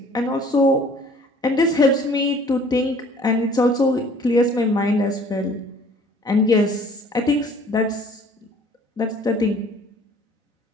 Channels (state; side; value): normal; both; correlation 0.54